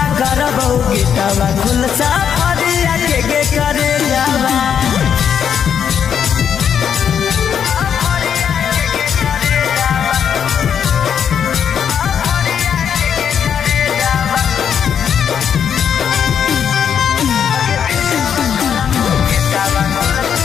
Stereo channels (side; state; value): right; quieter; 8.1 dB